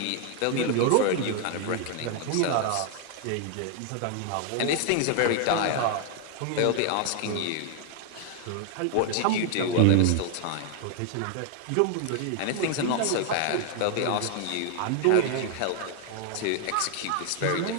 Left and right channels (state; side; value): different; both; correlation 0.00